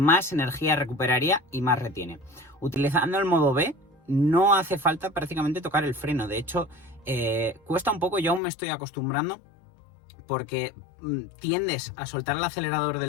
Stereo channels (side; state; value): right; drops out; at 8.4 s